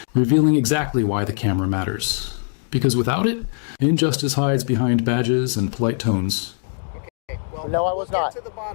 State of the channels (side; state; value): right; silent; digital silence